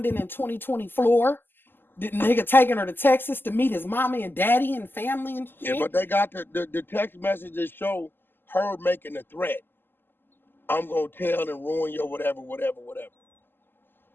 in 2020 floor, the nigga taking her to Texas to meet his mommy and daddy and family and shit. Yeah, but they got the text messages show her making a threat. I'm gonna tell and ruin your whatever.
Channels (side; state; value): right; late; 0.096 ms